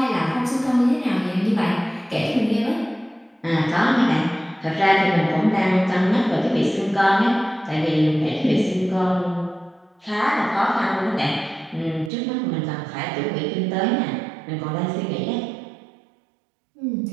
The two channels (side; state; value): left; drops out; at 12.1 s